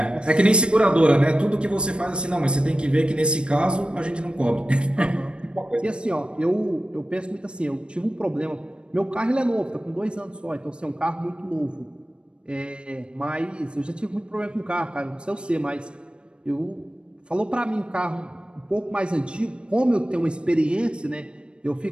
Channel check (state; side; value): late; left; 0.056 ms